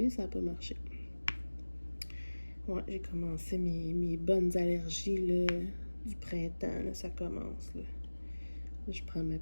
ça n'a pas marché. Ouais, j'ai commencé mes bonnes allergies là, du printemps, là, ça commence. Là. Je prends ma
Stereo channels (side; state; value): both; inverted; correlation -1.00